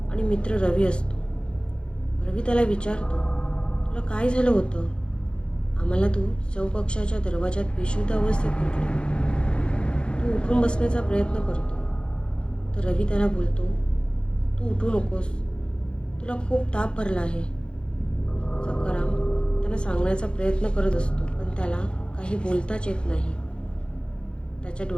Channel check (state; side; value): late; right; 0.055 ms